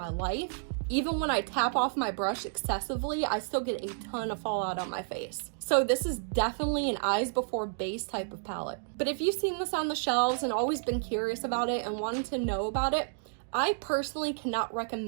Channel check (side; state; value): left; silent; digital silence